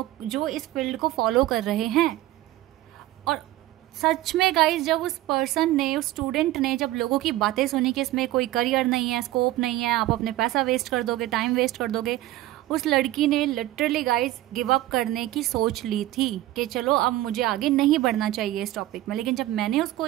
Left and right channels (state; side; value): quieter; left; 15.6 dB